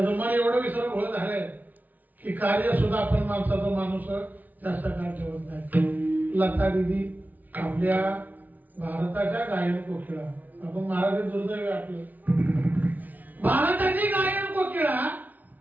मन एवढं विसरभोळ झालंय की कार्य सुद्धा आपण माणसाचा माणूस जास्त काळ ठेवत नाही. लता दीदी आपल्या भारताच्या गायन कोकिळा आपण महाराज दुर्दैव आपलं भारताची गायन कोकिळा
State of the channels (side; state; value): left; late; 0.080 ms